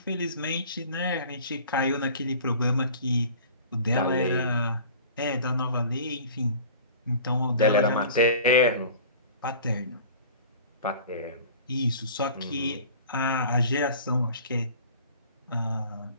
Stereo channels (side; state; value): both; inverted; correlation -0.43